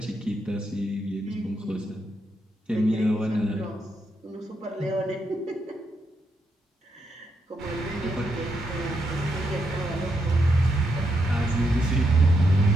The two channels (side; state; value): both; normal; correlation 0.80